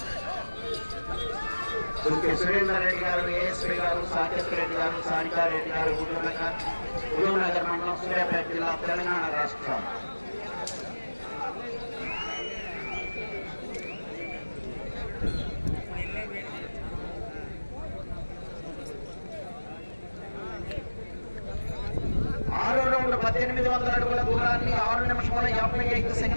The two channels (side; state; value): both; inverted; correlation -1.00